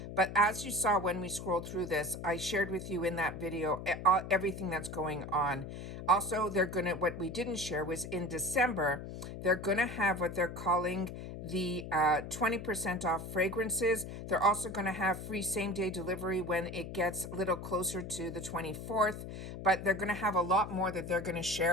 But as you saw when we scrolled through this, I shared with you in that video everything that's going on. Also, they're going to, what we didn't share was in December, they're going to have what they're calling the 20% off fragrances. They're also going to have free same-day delivery when it gets a little closer to the 24th. But they're going to have a lot more that they're going to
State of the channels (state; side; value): noise; left; hum, 9 dB below the sound